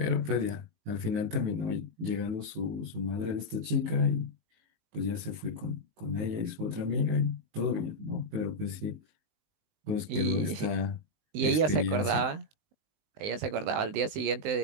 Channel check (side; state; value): left; late; 19 ms